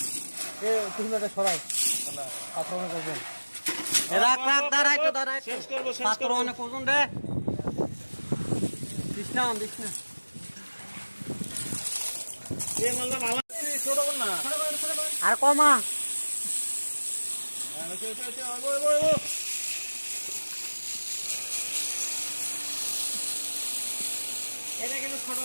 তুমি একটা সরাই পাথর অনেক ওজন, রাখ রাখ, দাঁড়াই তো দাঁড়াই, শেষ করবো, শেষ পাথর করবো। অনেক ওজন রে, দিস না দিস না। এই মালটা ভালো ছোট কর না, আর কমা, এটা কিন্তু ছোট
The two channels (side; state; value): both; inverted; correlation -1.00